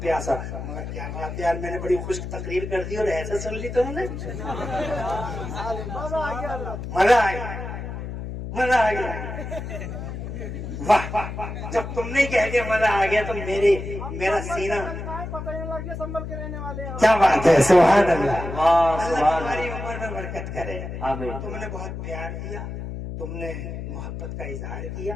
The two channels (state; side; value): noise; left; hum, 7 dB below the sound